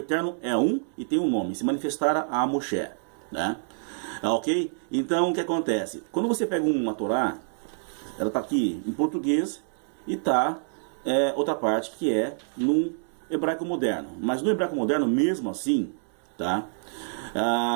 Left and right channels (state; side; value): silent; left; digital silence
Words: é um e tem um nome, se manifestara a Moshe, né? Ok? Então o que acontece? Quando você pega uma Torá, ela está aqui em português e está outra parte que é no hebraico moderno. Mas no hebraico moderno, mesmo assim, tá?